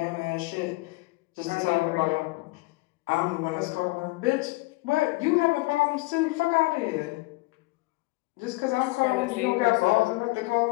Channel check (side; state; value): right; quieter; 22.9 dB